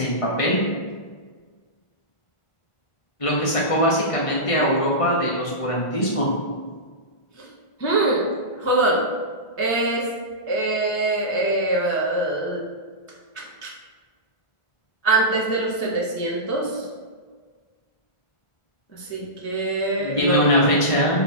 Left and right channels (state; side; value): late; right; 1.5 ms